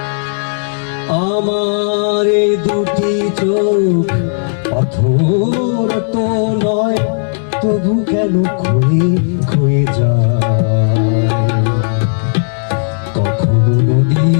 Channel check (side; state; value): right; silent; digital silence